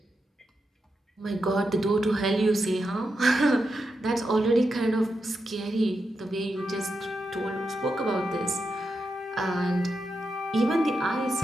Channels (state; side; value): normal; both; correlation 0.87